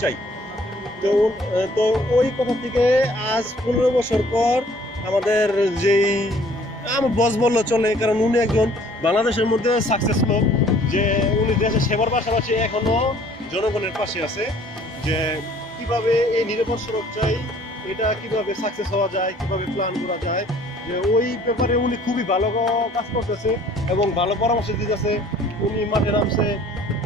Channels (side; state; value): both; normal; correlation 0.56